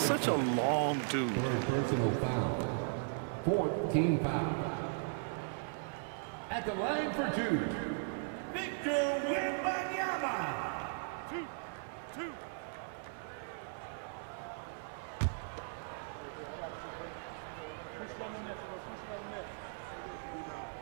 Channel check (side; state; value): left; silent; 53 dB below the other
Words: a long dude. Personal foul. 14 foul. At the line for 2, Victor Wembanyama. 2.